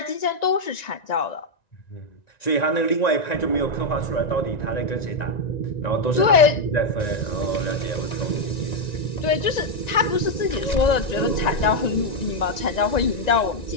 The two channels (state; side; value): late; right; 1.9 ms